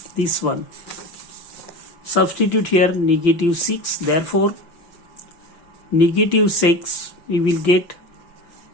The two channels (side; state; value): right; late; 5.9 ms